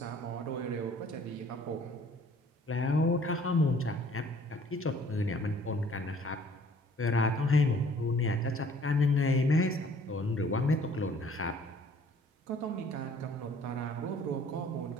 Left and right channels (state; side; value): normal; both; correlation 0.56